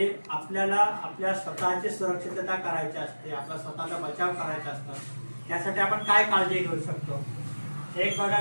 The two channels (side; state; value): both; inverted; correlation -1.00